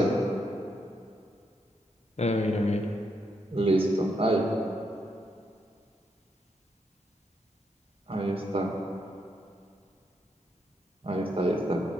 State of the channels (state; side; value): normal; both; correlation 0.79